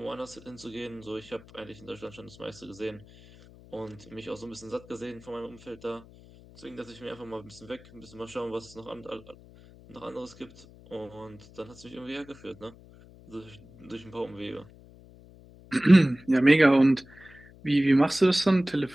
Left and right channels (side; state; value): left; noise; hum, 22 dB below the sound